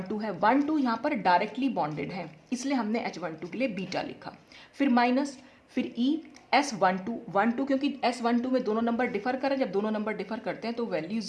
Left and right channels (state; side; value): identical; both; correlation 1.00